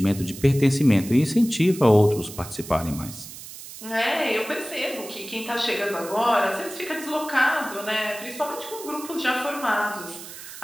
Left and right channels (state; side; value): noise; right; hiss, 13 dB below the sound